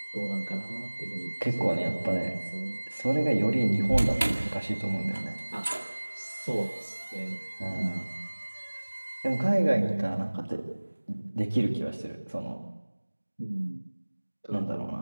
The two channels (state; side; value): inverted; both; correlation -1.00